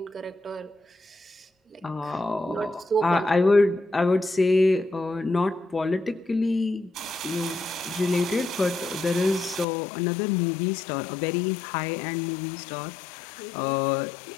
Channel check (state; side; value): drops out; right; at 9.7 s